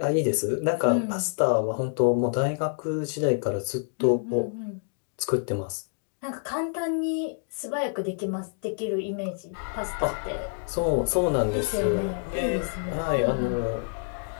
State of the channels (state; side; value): silent; right; digital silence